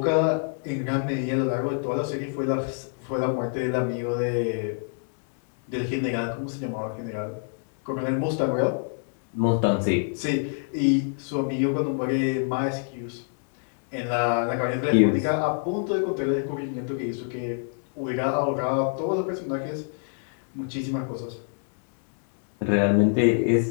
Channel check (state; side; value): silent; right; 60 dB below the other